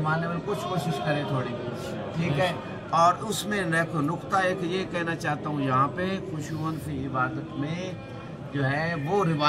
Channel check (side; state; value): both; identical; correlation 1.00